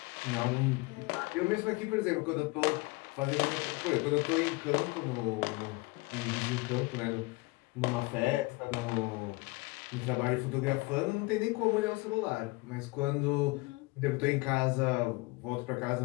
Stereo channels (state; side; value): quieter; right; 24.3 dB